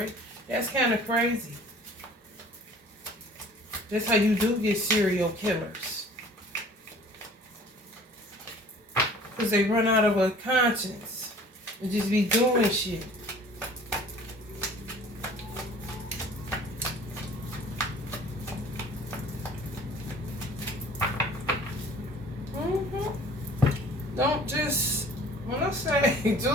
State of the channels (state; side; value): normal; both; correlation 0.49